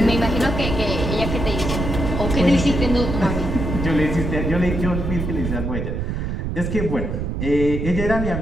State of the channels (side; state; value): right; noise; rumble, 3 dB below the sound